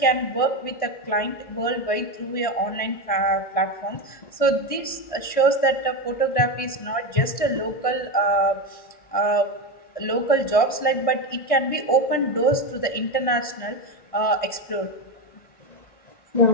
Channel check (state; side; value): late; right; 1.6 ms